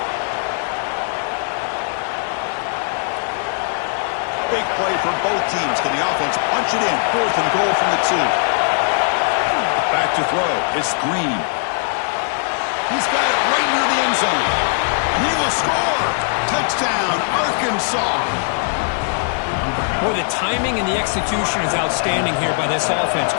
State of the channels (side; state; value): right; silent; digital silence